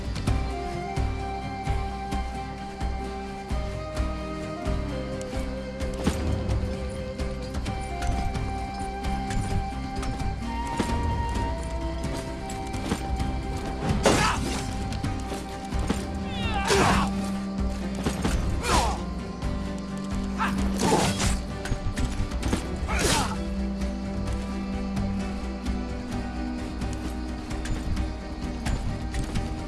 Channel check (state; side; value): identical; both; correlation 1.00